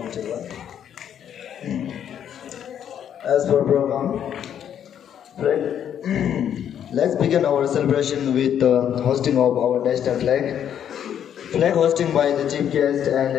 As per program, let's begin our celebration with the hosting of our national flag. Flag hosting by the chief guest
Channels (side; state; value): right; quieter; 9.4 dB